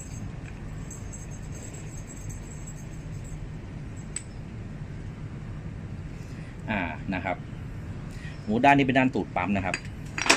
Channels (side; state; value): both; identical; correlation 1.00